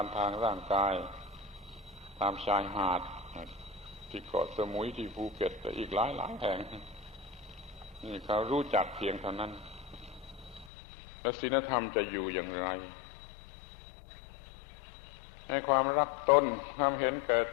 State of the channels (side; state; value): right; drops out; at 10.7 s